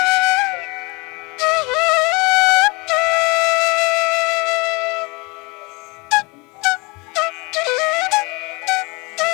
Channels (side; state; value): right; quieter; 27.2 dB